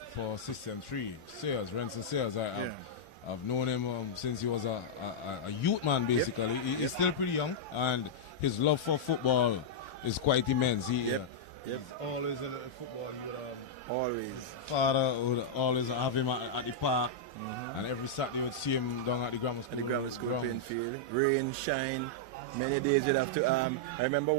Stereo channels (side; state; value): both; normal; correlation -0.06